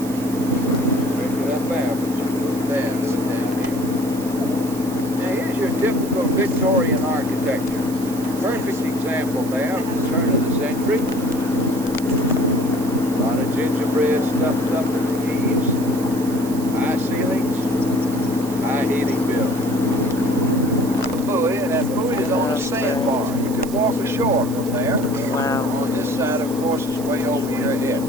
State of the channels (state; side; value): noise; right; hiss, 14 dB below the sound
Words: Drink it up there, but you do bad with the damn people. Now, here's your typical Victorian architecture. Perfect example there of the turn of the century. A lot of gingerbread stuffed up in the eaves, high ceilings, high heating bills. Buoy, and that buoy is on a sandbar. You can walk ashore from there. Wow. On this side, of course, is way over your head.